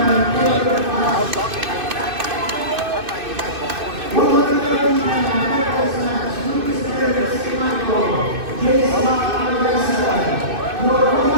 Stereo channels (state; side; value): late; left; 2.6 ms